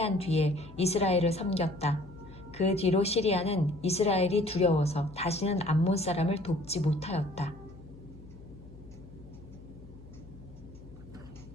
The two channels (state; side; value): noise; left; hum, 19 dB below the sound